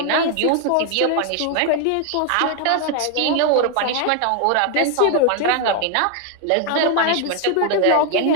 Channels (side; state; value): both; different; correlation 0.00